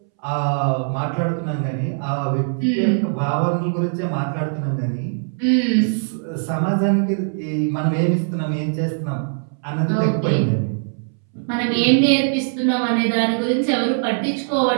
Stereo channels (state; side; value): silent; left; 64 dB below the other